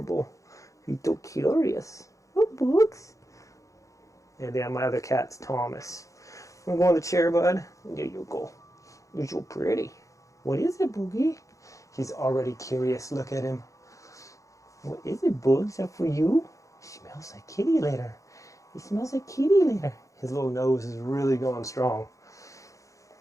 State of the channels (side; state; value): right; late; 0.16 ms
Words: He's so curious. Oh, Boogs. And yeah, my other cat's Thomas. I'm going to the chair, bud. There you go. You're so pretty. What is it, Boogie? He's already curious. Look at him. What is it, Boogs? Is that for you? He smells like kitty litter. He smells like kitty litter. His little nose is really going strong.